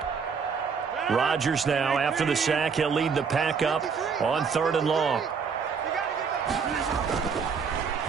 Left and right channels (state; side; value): quieter; left; 5.9 dB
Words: Rodgers now, after the sack, he'll lead the pack up on 3rd and long.